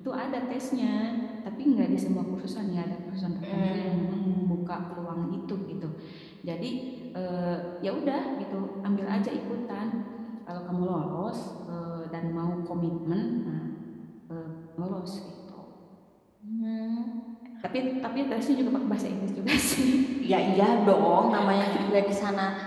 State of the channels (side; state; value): both; identical; correlation 1.00